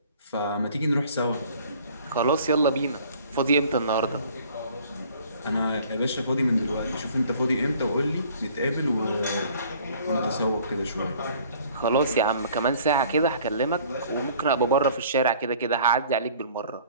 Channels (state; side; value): inverted; both; correlation -0.53